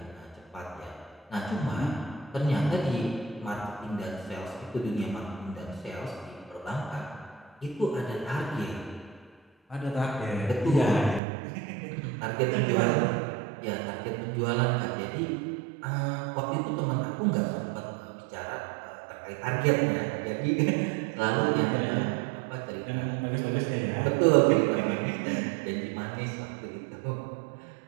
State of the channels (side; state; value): left; drops out; at 11.2 s